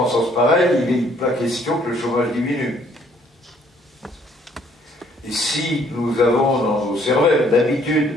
pareille, il n'est pas question que le chômage diminue. Et si nous avons dans nos cervelles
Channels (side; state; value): both; normal; correlation 0.63